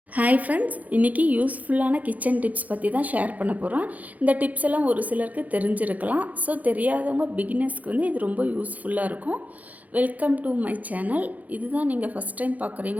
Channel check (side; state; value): left; late; 0.077 ms